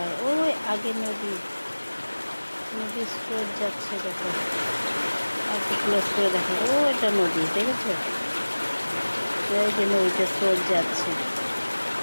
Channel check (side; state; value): both; inverted; correlation -1.00